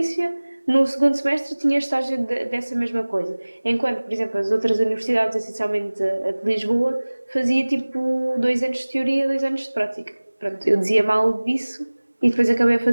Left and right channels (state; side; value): inverted; both; correlation -1.00